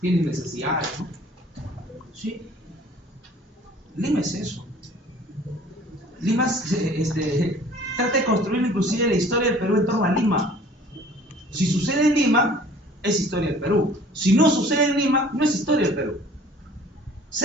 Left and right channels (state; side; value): normal; both; correlation 0.51